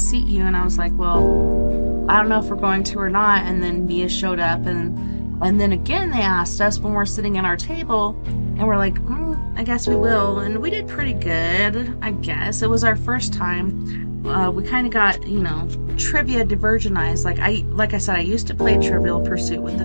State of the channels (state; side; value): inverted; both; correlation -1.00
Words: you." And I was like, "Well, I don't know if we're going to or not." And then Mia showed up, and then again they asked us when we're sitting at our table, and we're like, "I guess we will." And we did pretty good, I guess. It was our first time. We kind of got, trivia divergenized. Like I said, I used to play Trivial Pursuit with the